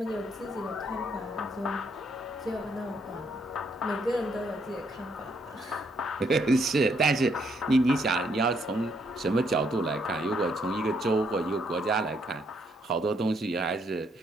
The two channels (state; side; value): normal; both; correlation 0.72